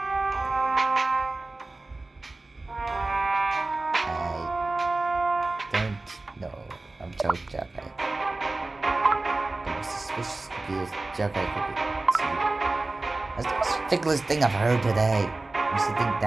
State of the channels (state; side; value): quieter; left; 3.1 dB